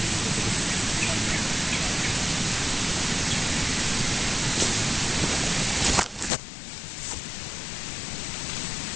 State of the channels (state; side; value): drops out; right; at 6.3 s